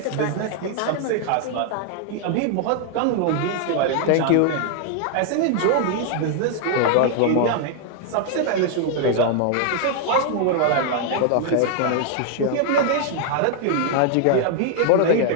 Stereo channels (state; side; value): different; both; correlation 0.00